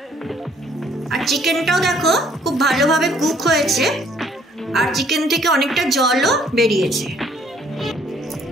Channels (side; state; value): both; normal; correlation 0.62